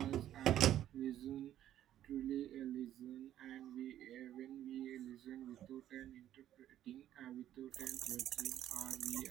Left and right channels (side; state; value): left; quieter; 11.9 dB